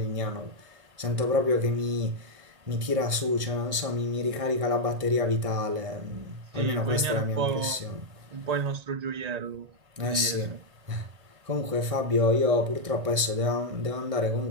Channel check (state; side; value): late; left; 1.6 ms